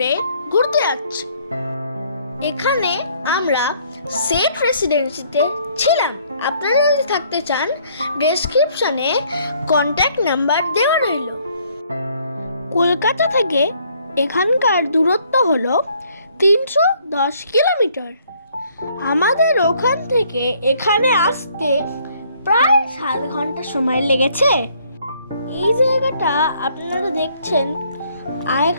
ঘুরতে যাচ্ছি। এখানে আমরা সেট রেসিডেন্সিতে ছিলাম। আপনারা যদি থাকতে চান, ডেসক্রিপশনে কন্ট্যাক্ট নাম্বার দেওয়া রইল। কলকাতা থেকে এখানকার দূরত্ব হলো 310 কিলোমিটার। আমাদের ওখান থেকে এখানে আসতে প্রায় 7 ঘন্টা সময় লেগেছে। এই জায়গাটা আপনারা দেখছেন,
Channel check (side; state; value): both; inverted; correlation -0.64